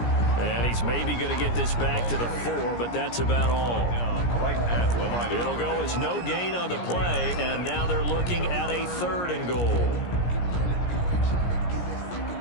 And he's maybe going to get this back to the 4, but that's about all. Right at the line. It'll go as no gain on the play, and now they're looking at a 3rd and goal.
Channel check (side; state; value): right; late; 17 ms